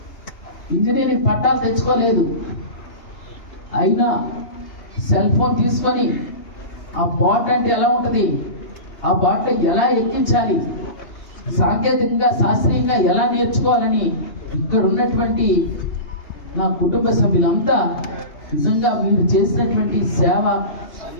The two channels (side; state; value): right; late; 3.2 ms